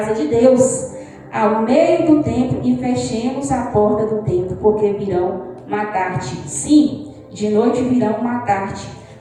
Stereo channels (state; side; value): identical; both; correlation 1.00